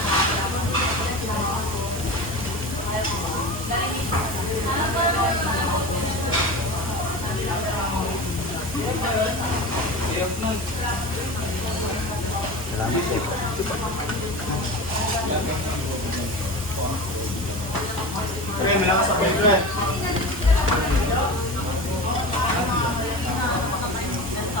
Salamat po. Okay, malakas ako ito eh.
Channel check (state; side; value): normal; both; correlation 0.29